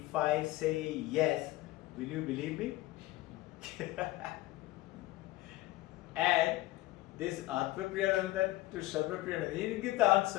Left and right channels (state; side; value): quieter; right; 17.7 dB